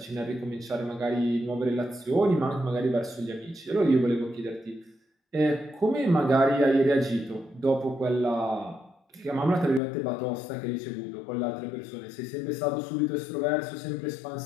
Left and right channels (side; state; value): right; drops out; at 9.8 s